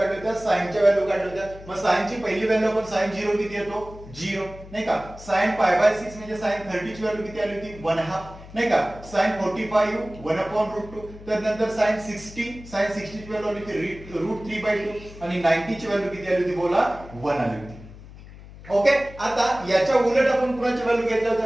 होती, साइनच्या व्हॅल्यू काढल्या होत्या। मग साइनची पहिली व्हॅल्यू आपण sin 0 किती येतो, 0 नाही का। sin π/6 म्हणजे sin 30 ची व्हॅल्यू किती आली होती, 1/2 नाही का। sin 45 1/√2, तर नंतर sin 60 ची व्हॅल्यू आली होती √3/2 आणि 90 ची व्हॅल्यू किती आली होती, बोला 1 आली होती। ओके, आता याच्या उलट आपण कुणाची व्हॅल्यू घेतल्या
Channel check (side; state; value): left; noise; hum, 17 dB below the sound